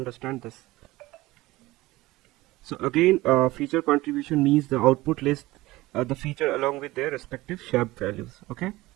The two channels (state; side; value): quieter; left; 19.0 dB